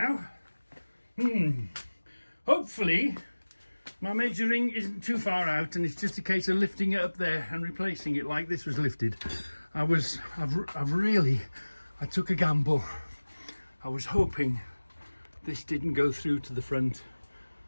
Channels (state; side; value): inverted; both; correlation -1.00